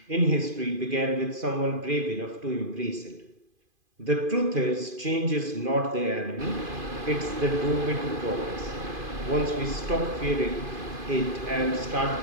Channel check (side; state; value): left; late; 2.5 ms